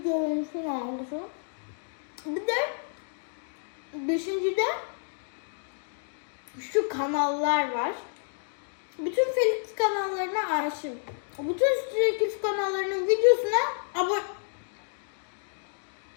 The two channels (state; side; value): silent; right; digital silence